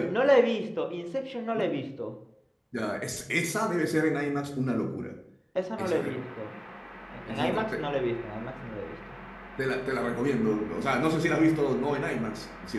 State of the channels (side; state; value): both; identical; correlation 1.00